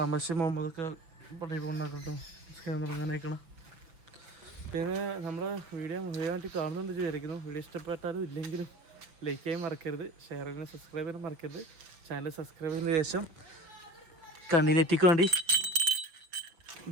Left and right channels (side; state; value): left; late; 6.0 ms